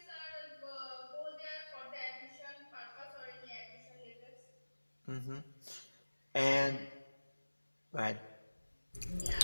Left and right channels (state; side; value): inverted; both; correlation -1.00